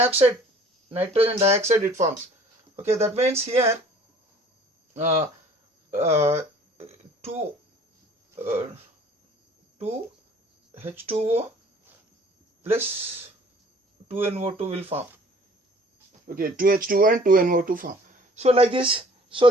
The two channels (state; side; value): normal; both; correlation 0.52